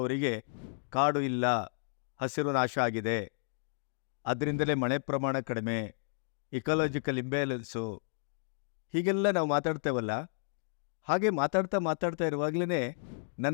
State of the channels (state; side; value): silent; right; digital silence